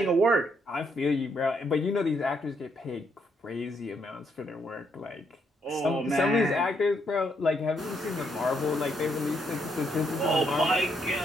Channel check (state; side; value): normal; both; correlation 0.75